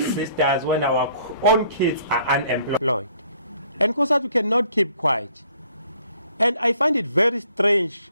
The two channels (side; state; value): both; inverted; correlation -0.61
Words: sisters, when our own kids are unemployed? And Cosatu cannot keep quiet. And I find it very strange,